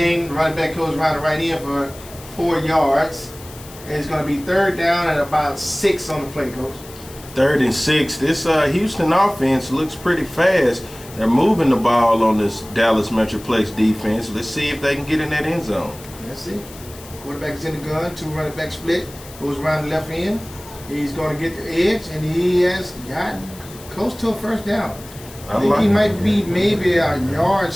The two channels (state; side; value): noise; left; hiss, 18 dB below the sound